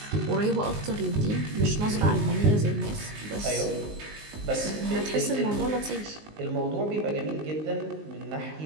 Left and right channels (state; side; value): late; left; 19 ms